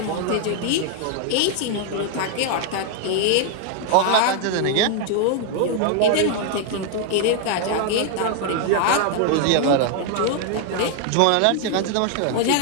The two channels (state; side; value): different; both; correlation 0.00